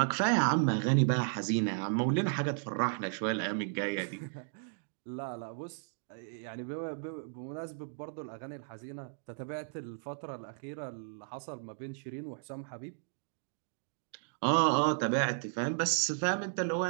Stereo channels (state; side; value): silent; left; digital silence